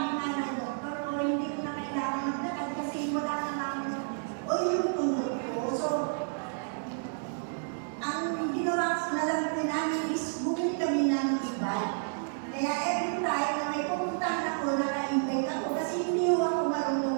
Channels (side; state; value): left; silent; digital silence